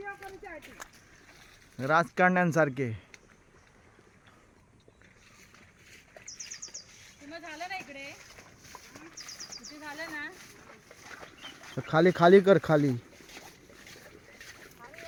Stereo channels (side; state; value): both; identical; correlation 1.00